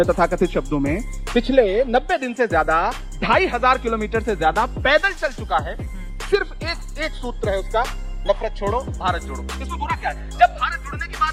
तथाकथित शब्दों में, पिछले 90 दिन से ज्यादा 2500 किलोमीटर से ज्यादा पैदल चल चुका है। सिर्फ एक सूत्र है उसका, नफरत छोड़ो भारत जोड़ो। इसमें बुरा क्या है? जब भारत जुड़ने की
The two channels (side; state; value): both; identical; correlation 1.00